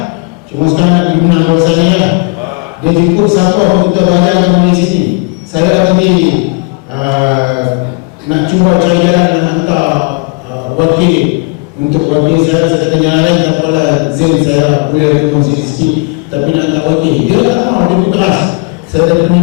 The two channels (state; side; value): quieter; right; 30.1 dB